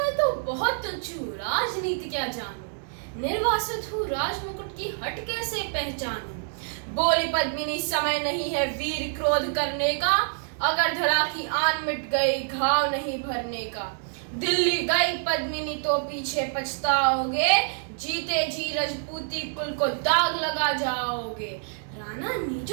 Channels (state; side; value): silent; left; digital silence